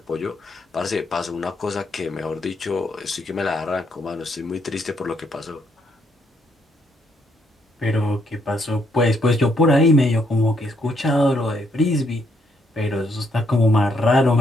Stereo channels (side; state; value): both; normal; correlation 0.73